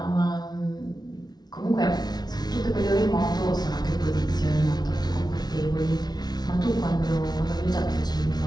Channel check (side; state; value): right; late; 0.19 ms